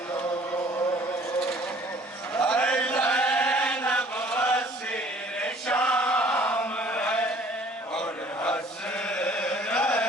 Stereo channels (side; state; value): both; normal; correlation 0.54